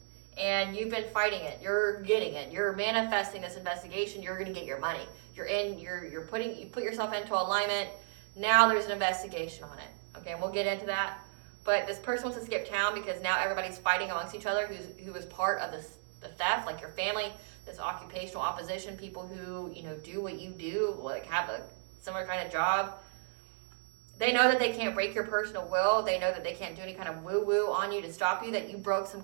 and you've been fighting it. You're getting it. You're manifesting this investigation. You're going to get your money. You put yourself into alignment. Now there's an investigation on it. Okay, and we'll get into that. But this person wants to skip town because now everybody's fighting amongst each other who is part of the theft, like your family, this occupational opposition, people who, do what you do, like have a similar kind of job. They know that they can't break your personal will. They know that they can't do any kind of woo-woo on you to stop you, that you broke some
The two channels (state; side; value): silent; left; digital silence